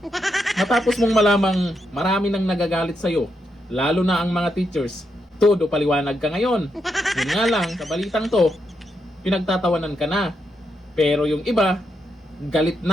Matapos mong malamang marami nang nagagalit sa'yo, lalo na ang mga teachers, todo paliwanag ka ngayon. Yun nga lang, sa balitang to, pinagtatawanan ka na. Pero yung iba, galit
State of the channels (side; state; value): both; normal; correlation 0.82